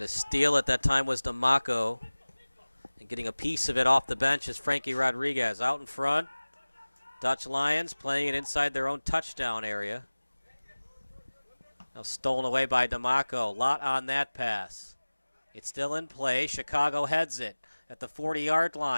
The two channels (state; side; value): inverted; both; correlation -1.00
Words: steal at that time was D'Amaco. And getting a piece of it off the bench is Frankie Rodriguez. Out in front, Dutch Lions playing it inside their own touchdown area. Now stolen away by D'Amaco. Lot on that pass. It's still in play. Chicago heads it at the 40-yard